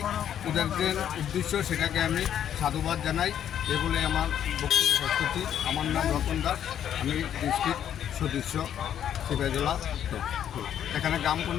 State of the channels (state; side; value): quieter; right; 9.9 dB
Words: ওদের যে উদ্দেশ্য সেটাকে আমি সাধুবাদ জানাই। এগুলো আমার বক্তব্য প্রস্তুতি। আমার নাম রতন দাস, আমি ডিস্ট্রিক্ট সদস্য সিপাহীজলা। এখানে গ্রাম